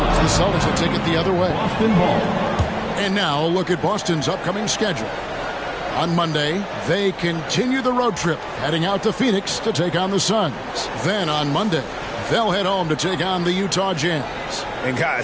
The Celtics will take it the other way. And now look at Boston's upcoming schedule. On Monday, they continue the road trip, heading out to Phoenix to take on the Suns. Then on Monday, they'll head home to take on the Utah Jazz. And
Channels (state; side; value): identical; both; correlation 1.00